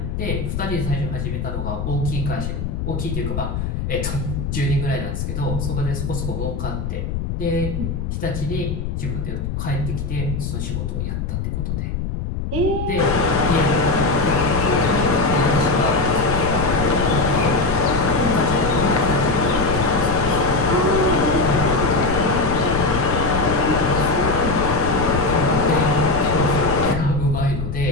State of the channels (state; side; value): noise; left; rumble, 3 dB below the sound